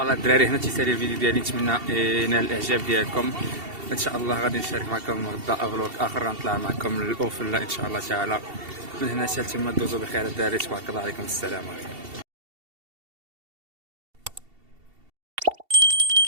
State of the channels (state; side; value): late; left; 2.7 ms